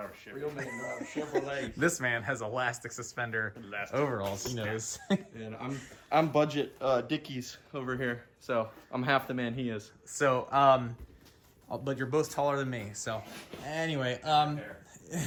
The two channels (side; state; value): both; identical; correlation 1.00